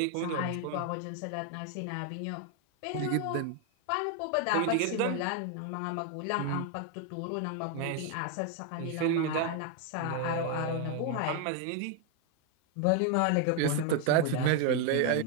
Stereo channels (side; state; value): both; different; correlation 0.01